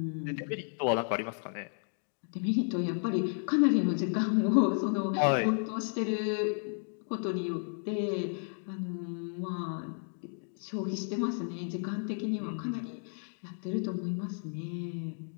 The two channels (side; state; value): right; silent; 56 dB below the other